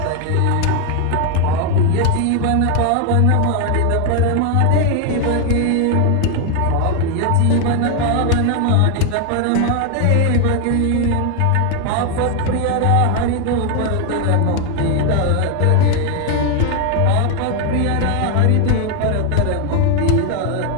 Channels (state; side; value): different; both; correlation 0.01